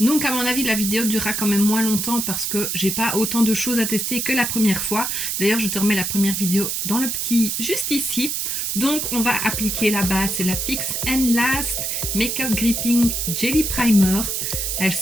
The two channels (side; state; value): right; noise; hiss, 1 dB below the sound